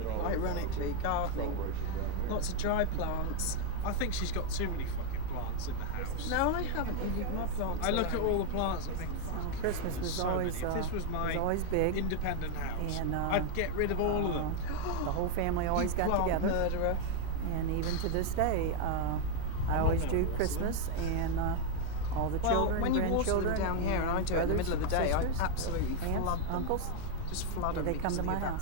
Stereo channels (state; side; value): different; both; correlation 0.00